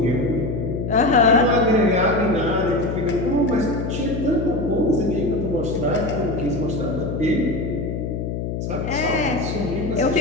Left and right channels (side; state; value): left; noise; hum, 4 dB below the sound